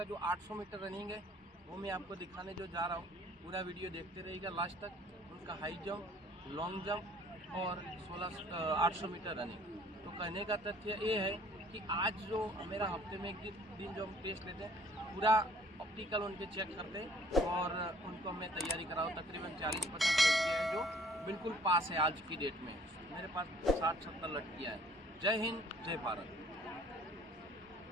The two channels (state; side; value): normal; both; correlation 0.57